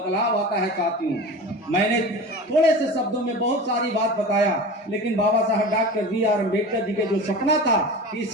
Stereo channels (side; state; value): both; normal; correlation 0.32